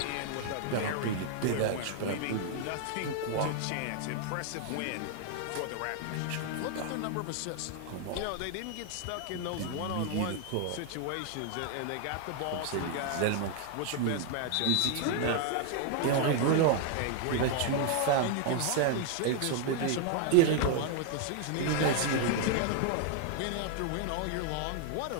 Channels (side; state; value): both; different; correlation 0.00